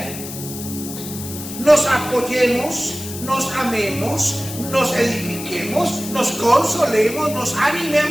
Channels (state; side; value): noise; left; hiss, 10 dB below the sound